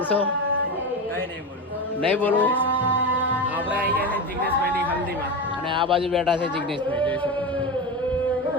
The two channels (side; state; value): both; normal; correlation 0.20